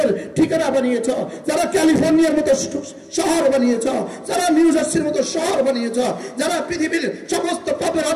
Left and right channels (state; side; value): identical; both; correlation 1.00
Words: ঠিকানা বানিয়েছ, যারা ক্যালিফোর্নিয়ার মতো শহর বানিয়েছ, যারা নিউ জার্সির মতো শহর বানিয়েছ, যারা পৃথিবীর সমস্ত পাপের